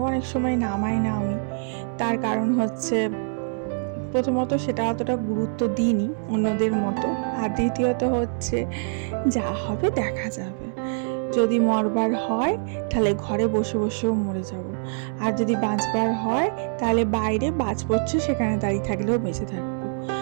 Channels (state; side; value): silent; left; 62 dB below the other